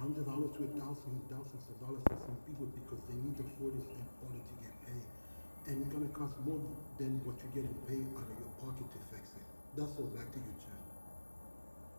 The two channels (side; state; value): both; inverted; correlation -1.00